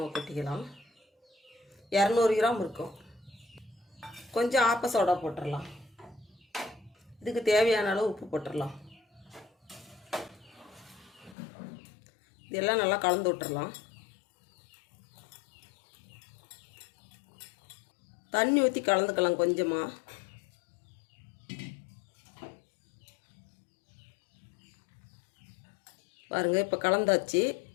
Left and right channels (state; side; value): drops out; right; at 11.4 s